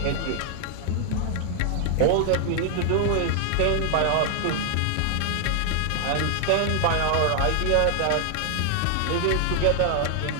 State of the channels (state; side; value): different; both; correlation 0.00